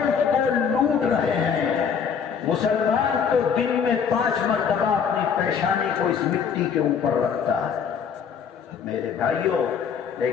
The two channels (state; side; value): quieter; right; 6.9 dB